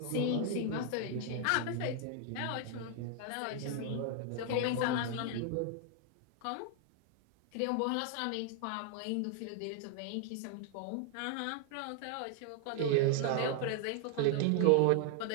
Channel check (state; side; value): different; both; correlation 0.00